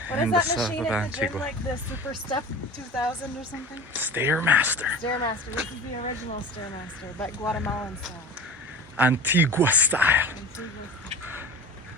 What is that machine at the gym, like the Super Step 2000 or something? Stairmaster. Stairmaster. This is the original Stairmaster, but Guatemalan style. Antigua style.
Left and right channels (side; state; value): both; normal; correlation 0.36